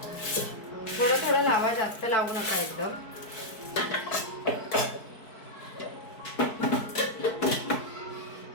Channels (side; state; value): right; late; 4.6 ms